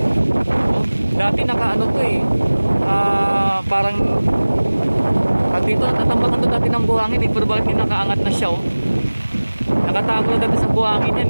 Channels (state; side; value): inverted; both; correlation -1.00